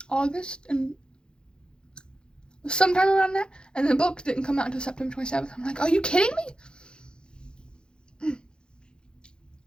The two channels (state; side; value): late; right; 0.049 ms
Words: August and sometime around that, and the book didn't come out until September 27th. I'm like, are you kidding me?